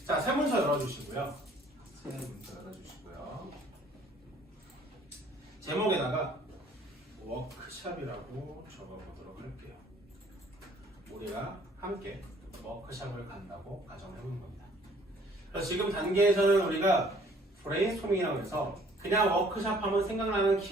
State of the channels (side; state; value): both; normal; correlation 0.58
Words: 자, 세문서 열어주시고요. 제목에다가 워크샵이라고 적어보도록 할게요. 우리가 함께 워크샵을 간다고 가정을 해보는 겁니다. 그래서 지금 단계에서는 우리가 브레인스토밍이라고 해서 그냥 워크샵 하면 생각나는